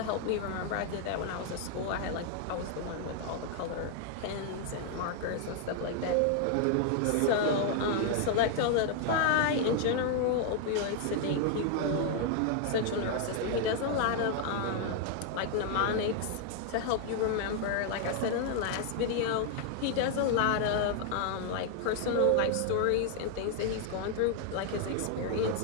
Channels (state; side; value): different; both; correlation 0.00